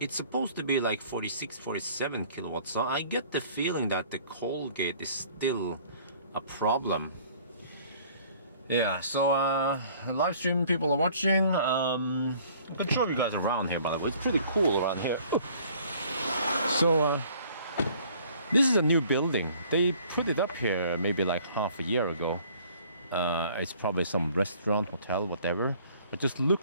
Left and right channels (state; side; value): inverted; both; correlation -0.55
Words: It's supposed to be like 46, 47 kilowatts. So I get the feeling that the Colgate is still a problem. Yeah, so live stream people are watching. I can show you guys around here, by the way. It's pretty cool around here. So this is a new building. They put it up here maybe like half a year ago. It's probably some restaurant, hotel, whatever. But just